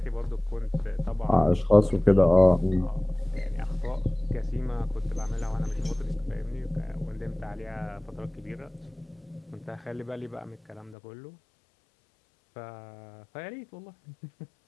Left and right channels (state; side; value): drops out; right; at 11.0 s